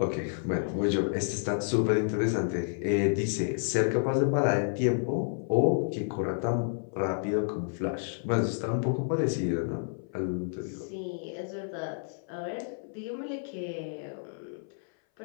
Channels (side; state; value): right; silent; 58 dB below the other